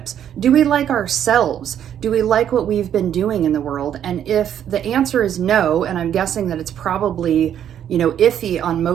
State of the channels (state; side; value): quieter; left; 9.9 dB